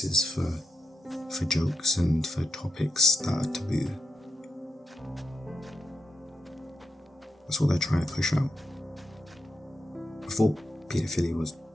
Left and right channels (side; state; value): both; normal; correlation 0.84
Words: for for jokes and for topics that are taboo. That's what they're trying to push out. Before paedophilia was